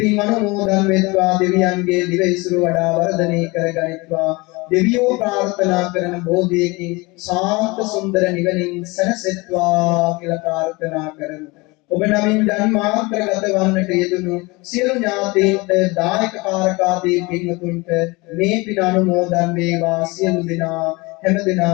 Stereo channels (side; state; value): right; quieter; 24.6 dB